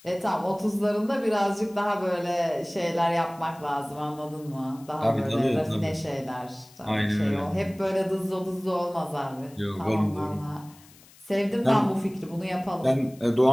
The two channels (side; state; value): left; noise; hiss, 25 dB below the sound